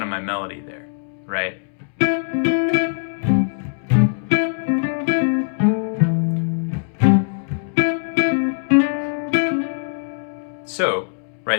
of my melody there. right? So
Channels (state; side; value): silent; right; 65 dB below the other